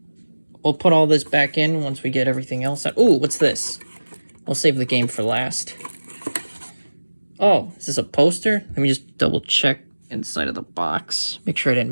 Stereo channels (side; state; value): both; inverted; correlation -1.00